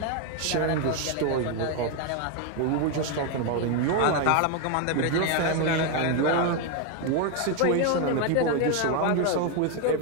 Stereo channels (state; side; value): different; both; correlation 0.01